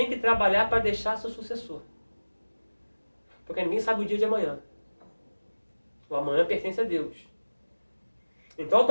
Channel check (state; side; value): inverted; both; correlation -1.00